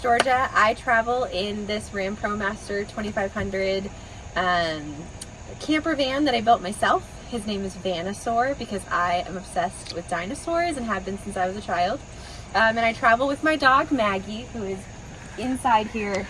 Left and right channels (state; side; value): identical; both; correlation 1.00